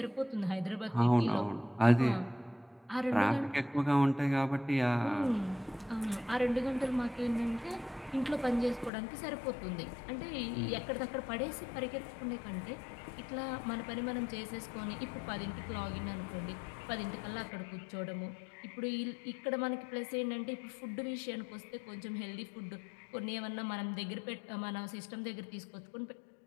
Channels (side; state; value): right; drops out; at 8.9 s